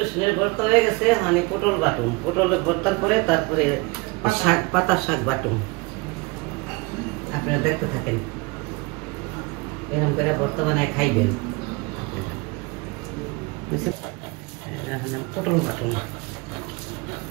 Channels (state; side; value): quieter; left; 26.2 dB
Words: ভর্তা হয়ে গেছে, মানে পটল বাটুম, পটলের ভর্তার পরে তারপরে শাক, পাতার শাক বাটুম। আপনারা দেখতে থাকেন, এরকম করে ভর্তা বানায় খাইবেন। পটল বাটুম,